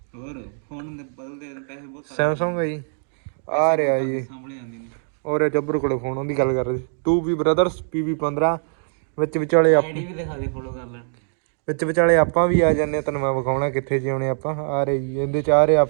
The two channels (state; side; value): silent; left; digital silence